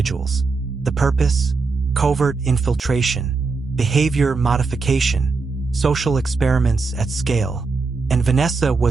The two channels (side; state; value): left; quieter; 4.3 dB